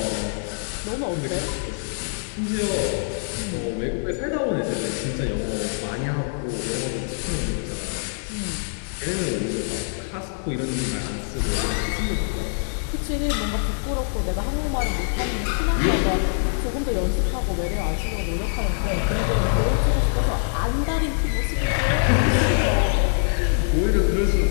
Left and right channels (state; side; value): silent; right; digital silence